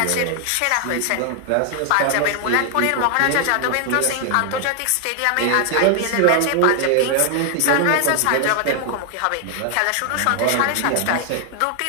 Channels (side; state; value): both; different; correlation 0.00